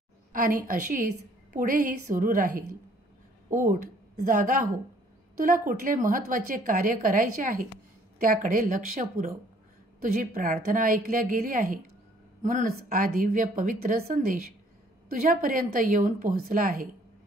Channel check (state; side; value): normal; both; correlation 0.60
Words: आणि अशीच पुढेही सुरू राहील. उठ, जागा हो. तुला कुठले महत्त्वाचे कार्य करायचे आहे त्याकडे लक्ष पुरव. तुझी प्रार्थना ऐकल्या गेली आहे, म्हणूनच हा दिव्य पवित्र संदेश तुझ्यापर्यंत येऊन पोहोचला आहे.